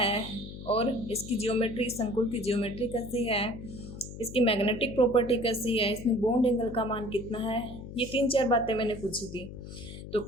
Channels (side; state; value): left; noise; hum, 12 dB below the sound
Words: और इसकी जियोमेट्री, संकुल की जियोमेट्री कैसी है, इसकी मैग्नेटिक प्रॉपर्टी कैसी है, इसमें बॉन्ड एंगल का मान कितना है, ये 3-4 बातें मैंने पूछी थी। तो